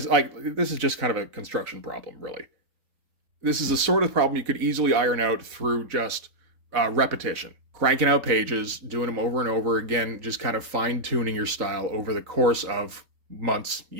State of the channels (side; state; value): left; late; 4.0 ms